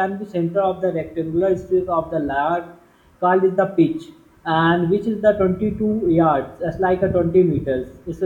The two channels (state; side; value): identical; both; correlation 1.00